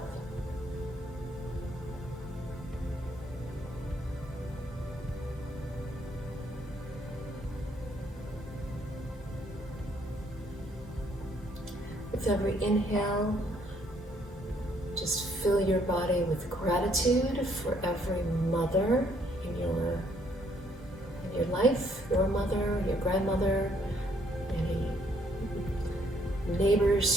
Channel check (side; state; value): both; normal; correlation 0.67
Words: With every inhale, just fill your body with gratitude for every mother in your life, your mother, your grandmother, any